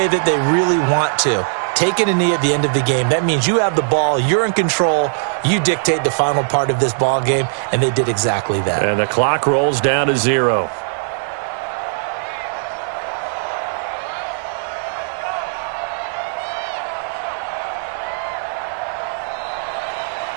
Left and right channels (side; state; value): left; silent; digital silence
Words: that they really want to. Taking a knee at the end of the game, that means you have the ball, you're in control, you dictate the final part of this ball game, and they did exactly that. And the clock rolls down to 0.